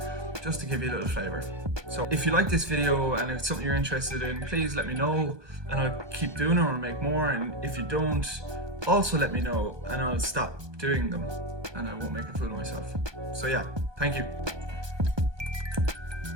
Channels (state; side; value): late; left; 1.2 ms